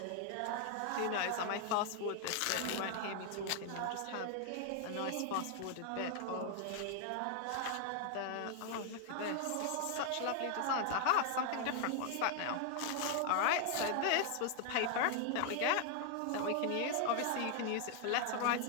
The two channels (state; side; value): different; both; correlation 0.00